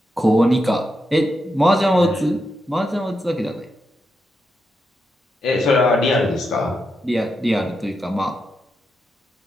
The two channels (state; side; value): normal; both; correlation 0.85